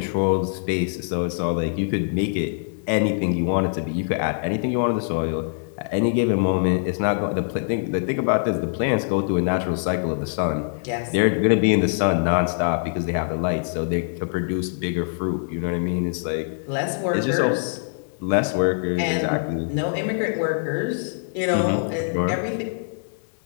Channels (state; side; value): silent; right; digital silence